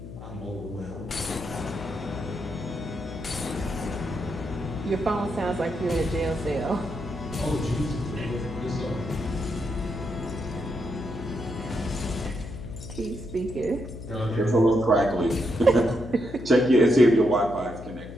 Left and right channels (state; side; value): noise; left; hum, 12 dB below the sound